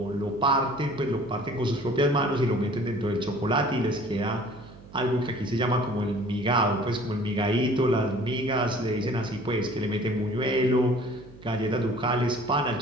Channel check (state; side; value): noise; right; hum, 20 dB below the sound